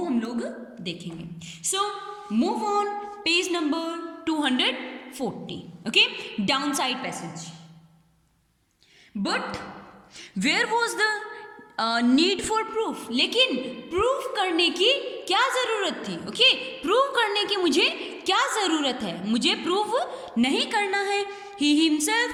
हम लोग देखेंगे। So move on page number 240। Okay, down side passage. But where was the need for proof? लेकिन प्रूफ करने की क्या ज़रूरत थी? ओके, प्रूव करने की मुझे क्या ज़रूरत है? मुझे प्रूव नहीं करना है। He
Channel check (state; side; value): identical; both; correlation 1.00